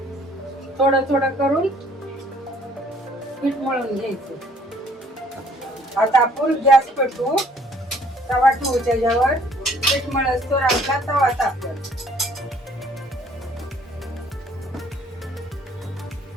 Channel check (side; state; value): both; normal; correlation 0.59